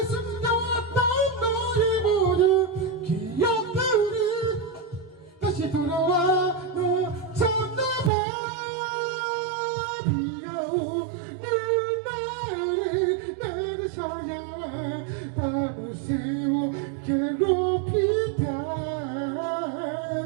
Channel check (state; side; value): drops out; left; at 8.1 s